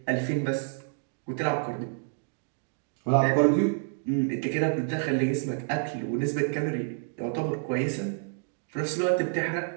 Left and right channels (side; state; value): left; silent; digital silence